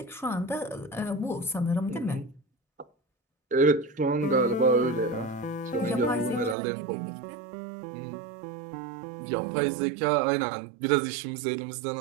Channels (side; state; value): left; drops out; at 6.6 s